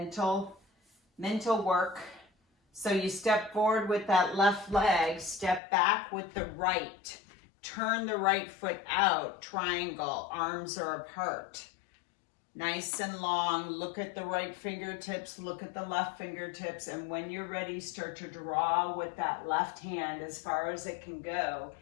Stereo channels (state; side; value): drops out; right; at 5.6 s